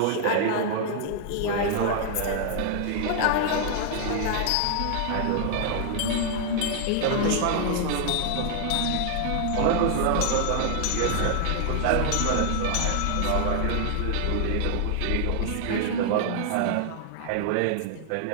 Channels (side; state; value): both; different; correlation 0.00